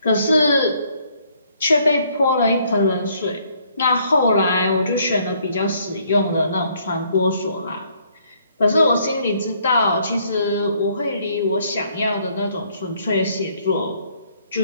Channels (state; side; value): inverted; both; correlation -0.66